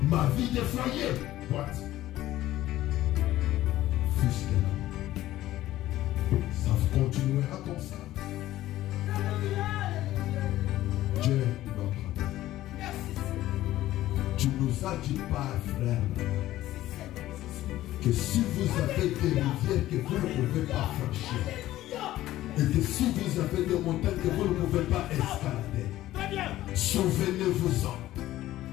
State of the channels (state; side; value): quieter; right; 14.8 dB